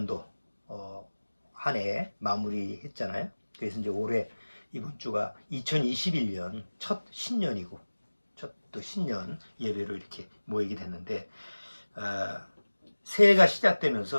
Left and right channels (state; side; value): inverted; both; correlation -1.00